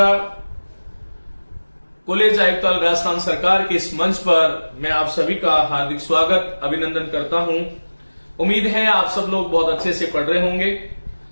कॉलेज आयुक्ताल राजस्थान सरकार के इस मंच पर मैं आप सभी का हार्दिक स्वागत अभिनंदन करता हूं। उम्मीद है आप सब लोग बहुत अच्छे से पढ़ रहे होंगे।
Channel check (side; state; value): both; inverted; correlation -1.00